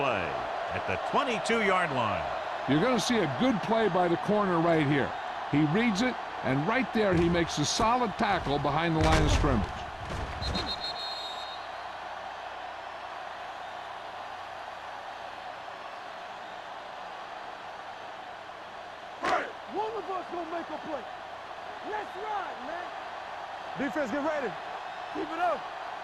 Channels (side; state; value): both; identical; correlation 1.00